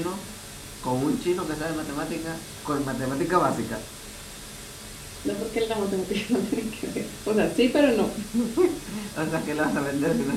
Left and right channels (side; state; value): both; identical; correlation 1.00